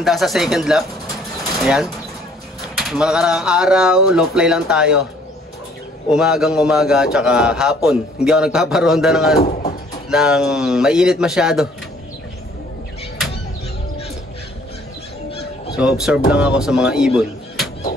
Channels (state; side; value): normal; both; correlation 0.59